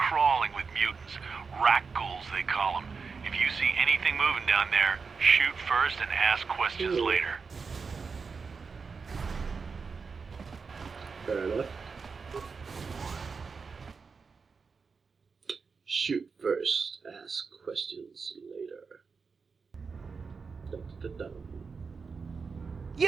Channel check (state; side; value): quieter; left; 5.1 dB